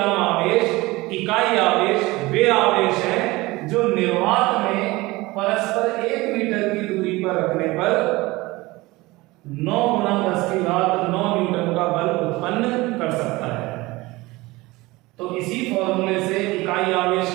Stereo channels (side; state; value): left; quieter; 21.0 dB